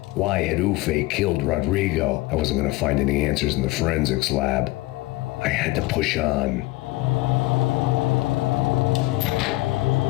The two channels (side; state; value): right; quieter; 20.0 dB